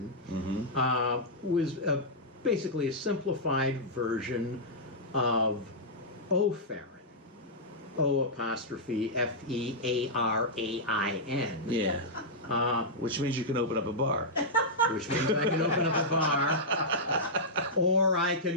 was basically a simplified version of O'Farron. O''F-E-A-R-A-I-N. Yeah. Which means you can open up a bar. Which means I can open up a bar, or I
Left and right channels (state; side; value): normal; both; correlation -0.09